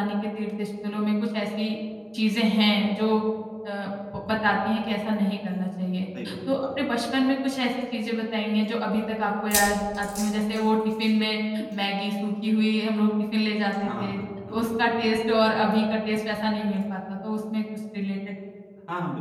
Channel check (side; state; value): both; identical; correlation 1.00